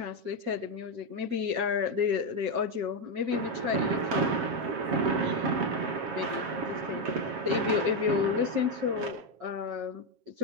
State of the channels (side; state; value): left; late; 7.3 ms